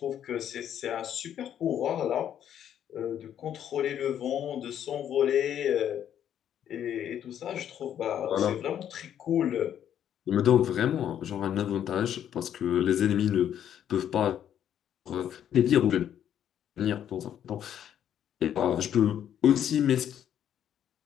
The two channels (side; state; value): right; quieter; 10.0 dB